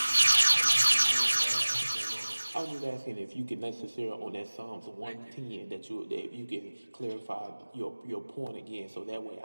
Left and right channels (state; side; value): inverted; both; correlation -1.00